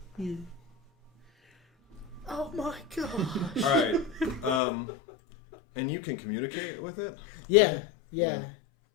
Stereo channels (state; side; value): drops out; right; at 4.6 s